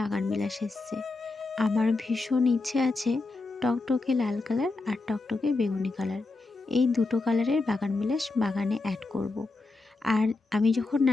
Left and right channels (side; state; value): right; quieter; 3.5 dB